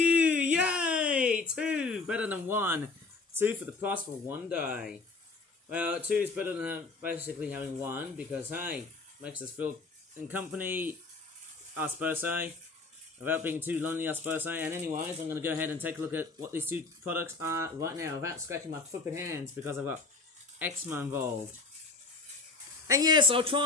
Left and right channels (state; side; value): quieter; right; 3.9 dB